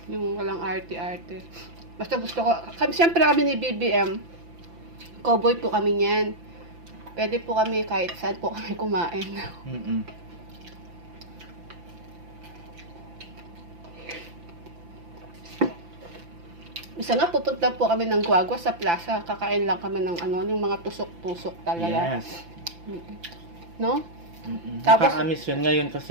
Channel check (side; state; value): left; late; 5.9 ms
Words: Yung walang arte-arte. Basta gusto ko, siyempre kami ni BBM, cowboy po kami niyan. Pwede po kami kahit saan po kami kumain. Isa nga, pupunta po kami ng Guagua sa plaza. Kakain lang kami ng yung mga tusok-tusok talaga. Yes. No? Tapos, nakakamiss yun ngayon